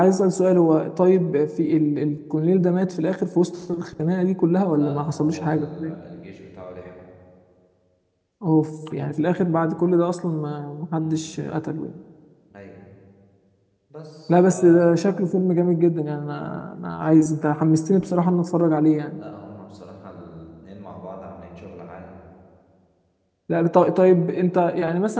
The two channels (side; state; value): both; identical; correlation 1.00